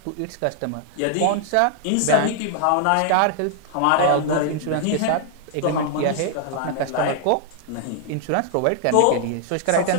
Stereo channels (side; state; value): both; different; correlation -0.01